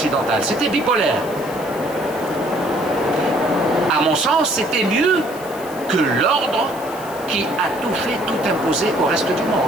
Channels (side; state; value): left; noise; hiss, 17 dB below the sound